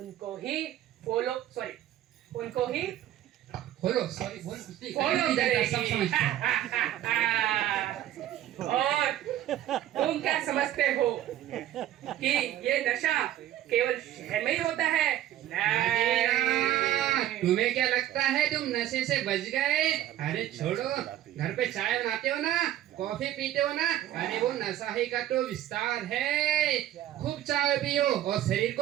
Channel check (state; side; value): quieter; left; 12.6 dB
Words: ही उनको ही बोलो, सॉरी बोल, फॉलो करेगी। और तुम क्या समझते हो कि ये नशा केवल शहर में ही होता है? नहीं। तुम्हें क्या लगता है तुम नशे से बच गए? अरे छोड़ो, घर पे चाय बनाते हो ना, कॉफी पीते हो ना, अरे वो नशा ही का तो विस्तार है। खूब चाय पियो और शरीर